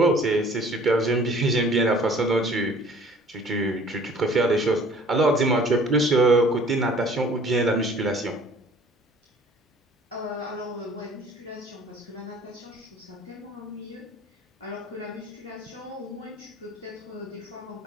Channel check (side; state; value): both; normal; correlation 0.52